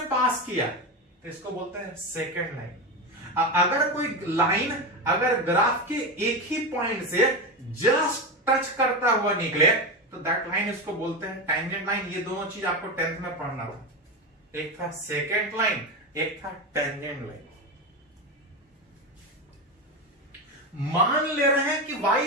पास किया तो इसको बोलते हैं सेकेंड लाइन। अगर कोई लाइन अगर ग्राफ के एक ही पॉइंट से जस्ट टच करता हुआ निकले तो दैट लाइन इसको बोलते हैं टेंजेंट लाइन। ये दोनों चीज आपको 10th में पढ़ना था। एक था सेकेंड लाइन, एक था टेंजेंट लाइन। मान ले रहे हैं कि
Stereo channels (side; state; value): both; normal; correlation 0.16